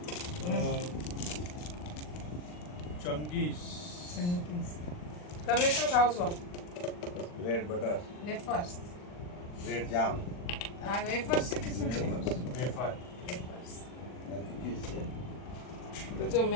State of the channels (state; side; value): late; right; 40 ms